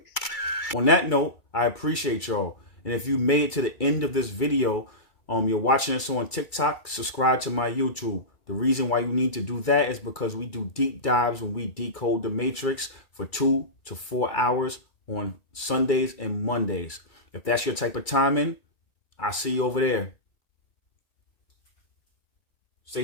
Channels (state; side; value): late; right; 2.3 ms